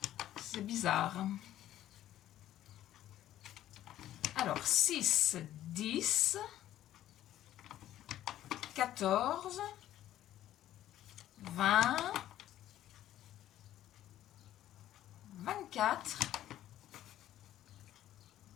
C'est bizarre. Alors, 6, 10, 14, 20, 24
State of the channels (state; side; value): quieter; right; 12.8 dB